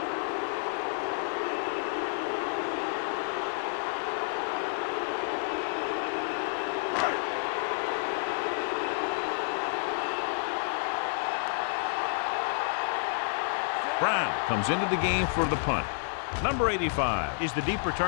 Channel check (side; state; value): right; silent; digital silence